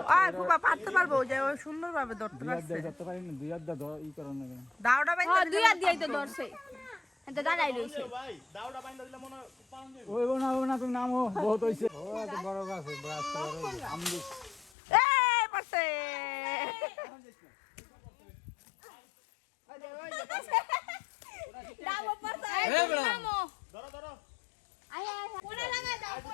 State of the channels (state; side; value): drops out; right; at 14.7 s